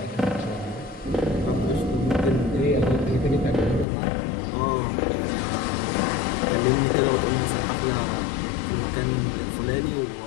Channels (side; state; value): right; drops out; at 3.9 s